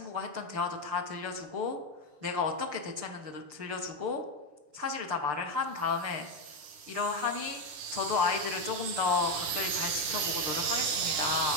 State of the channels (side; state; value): left; late; 6.7 ms